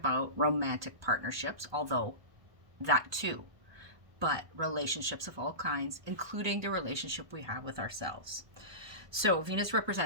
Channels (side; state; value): left; late; 1.2 ms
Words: romantic partnerships, although that too, but relationships of all kinds, including the relationship we have with ourselves. So Venus